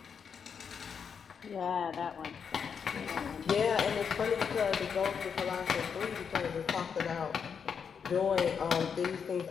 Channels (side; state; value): right; quieter; 6.7 dB